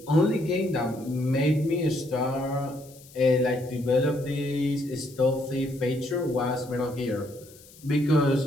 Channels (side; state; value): left; noise; hiss, 23 dB below the sound